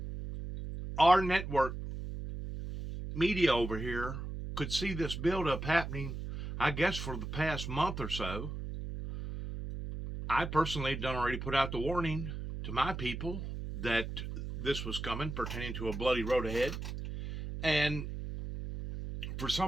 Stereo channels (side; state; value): right; noise; hum, 6 dB below the sound